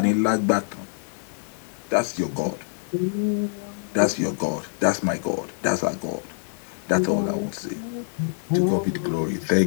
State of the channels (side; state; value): right; silent; 56 dB below the other